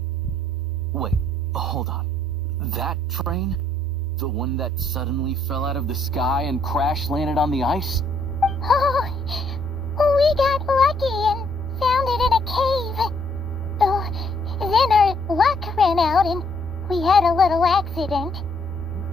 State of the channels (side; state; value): both; normal; correlation 0.68